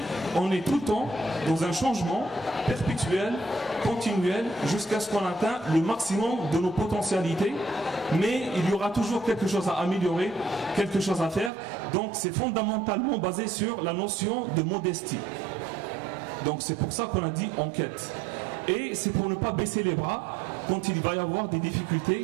on est tout le temps dans un changement perpétuel, continuel, jusqu'à ce qu'on atteigne le maximum de nos potentialités. Mais il y aura toujours quelque chose à améliorer, quelque chose à faire. Donc c'est fondamentalement basé sur la notion de modestie. Donc c'est pour ça qu'on a dit en quête. Et c'est pour ne pas baisser les bras quand il va y avoir des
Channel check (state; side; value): drops out; left; at 11.5 s